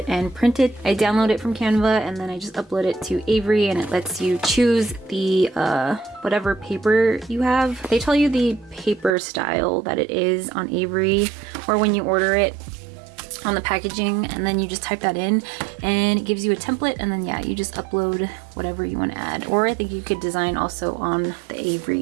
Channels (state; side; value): drops out; left; at 9.2 s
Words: and print it. I download it from Canva and then I just upload it to Avery, and it lets you choose the whatever paper you have. They tell you the paper style that it is on Avery, or when you order it on the packaging, and then you just type that in and it gives you a template, and then yeah, you just upload whatever you want to add. Or I think you could design also on the